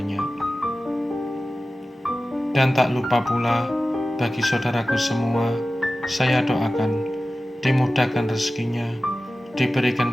Dan tak lupa pula, bagi saudaraku semua, saya doakan dimudahkan rezekinya,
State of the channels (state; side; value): normal; both; correlation 0.95